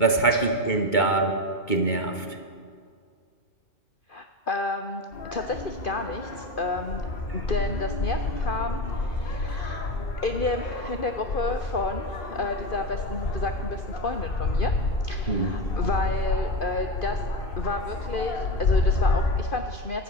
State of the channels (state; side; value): late; right; 2.2 ms